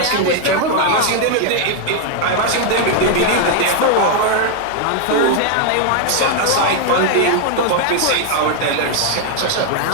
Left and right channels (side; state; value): both; different; correlation 0.00